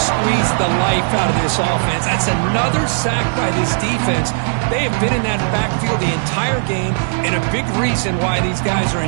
the life out of this offense. That's another sack by this defense. They have been in that backfield the entire game, and a big reason why these guys are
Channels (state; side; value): silent; left; digital silence